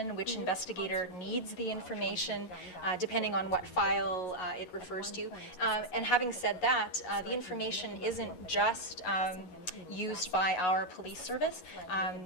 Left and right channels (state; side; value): late; right; 11 ms